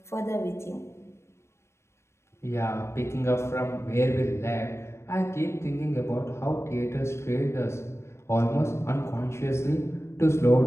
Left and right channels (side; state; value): right; late; 0.13 ms